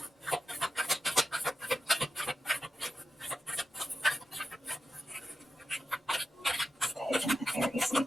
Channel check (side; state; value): both; normal; correlation 0.91